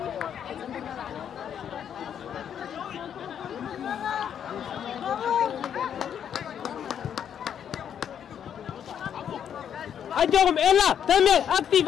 أجوهم إلا تمام أكتيف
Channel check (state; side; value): quieter; right; 8.8 dB